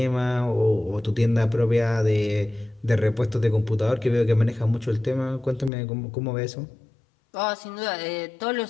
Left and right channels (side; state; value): right; drops out; at 5.7 s